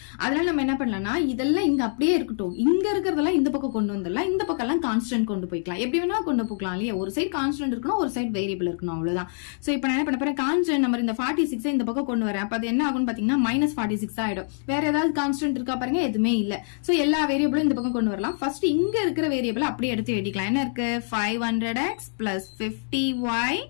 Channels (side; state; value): right; silent; digital silence